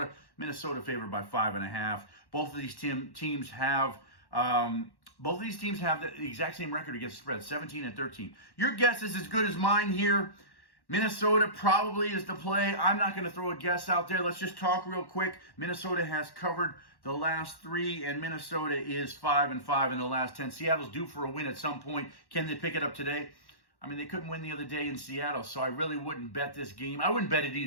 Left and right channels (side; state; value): right; late; 1.1 ms